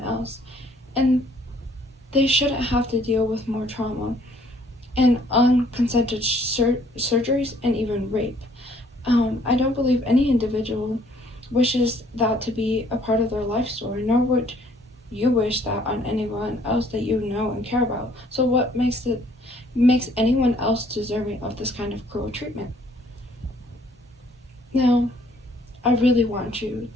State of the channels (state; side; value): normal; both; correlation 0.62